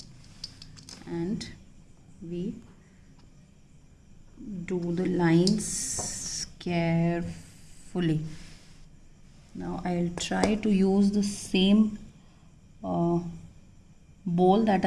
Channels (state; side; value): identical; both; correlation 1.00